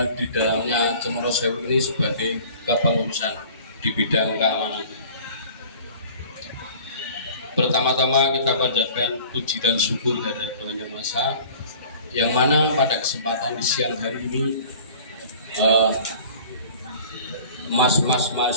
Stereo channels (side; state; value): both; inverted; correlation -0.46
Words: di dalamnya Cemoro Sewu ini sebagai kepengurusan di bidang keamanan. Pertama-tama kita panjatkan puji dan syukur dari Tuhan Yang Maha Esa, yang mana pada kesempatan di siang hari ini mas-mas